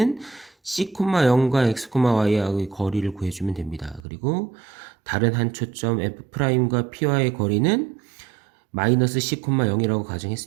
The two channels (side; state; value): left; drops out; at 4.0 s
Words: c, 0과 x, y하고의 거리를 구해주면 됩니다. 그리고 다른 한 초점 f'과 p와의 거리는 마이너스 c, 0이라고